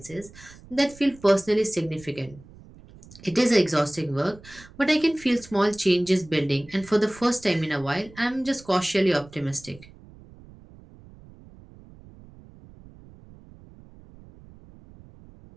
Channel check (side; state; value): right; noise; rumble, 22 dB below the sound